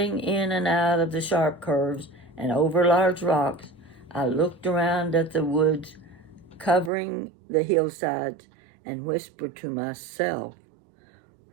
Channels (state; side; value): drops out; left; at 6.9 s